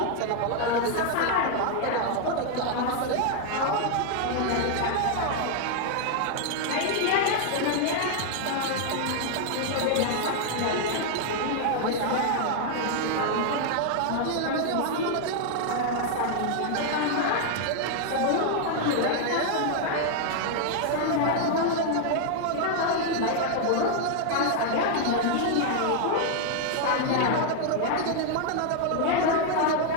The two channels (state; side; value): different; both; correlation 0.00